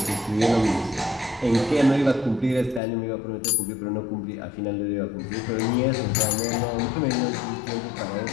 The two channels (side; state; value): right; drops out; at 2.8 s